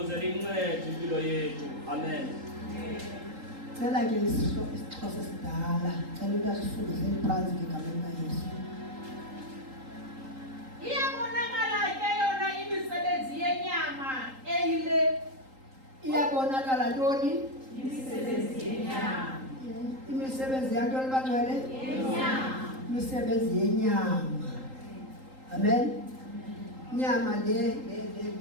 lincede impilo yethu. Amen. Cela ke isixhosa sidala. Cela ukuthi asifundise phansi ngegameni kaYesu. Iyabonakala ke yona imisebenzi yenyama eyile. Iyabonakala ntoni? Imisebenzi yenyama. Imisebenzi yantoni bangcwele? Yenyama. Imisebenzi yenyama. Amen. Nyama le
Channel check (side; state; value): left; late; 3.8 ms